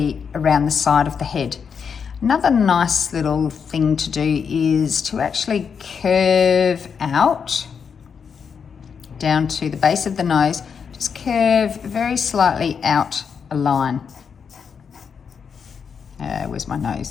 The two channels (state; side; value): quieter; right; 6.5 dB